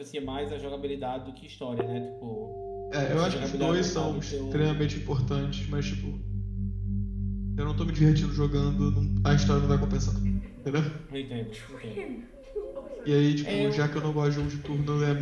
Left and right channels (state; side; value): identical; both; correlation 1.00